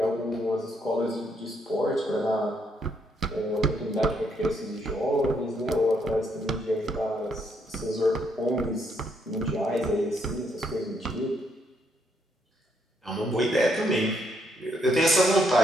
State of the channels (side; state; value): both; normal; correlation 0.74